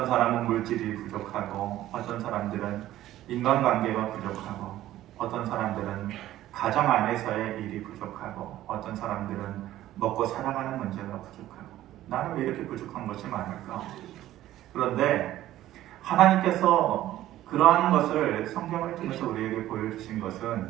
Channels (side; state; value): left; quieter; 14.0 dB